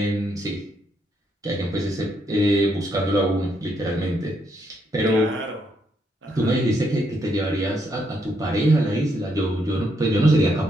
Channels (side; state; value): both; normal; correlation 0.76